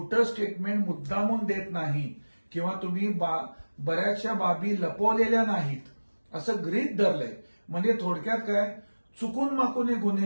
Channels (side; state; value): both; inverted; correlation -1.00